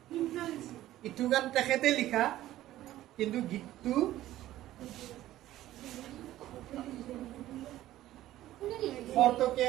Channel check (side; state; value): left; quieter; 14.4 dB